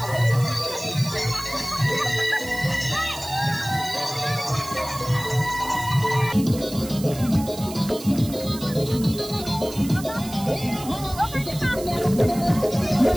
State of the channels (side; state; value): right; noise; hiss, 14 dB below the sound